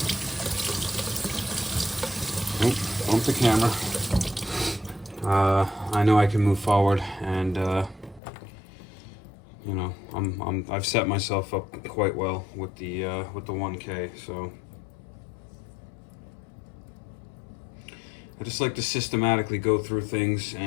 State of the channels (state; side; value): drops out; right; at 8.2 s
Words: bump the camera, I know I can move forward, and you know, I've set myself up quite well with the 1K. So I just like to systematically go through things,